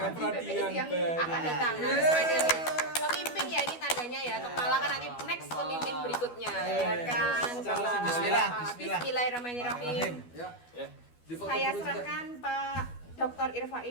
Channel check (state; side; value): late; right; 12 ms